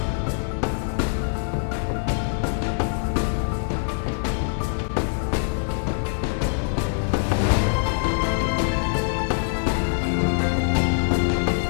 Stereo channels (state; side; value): silent; right; digital silence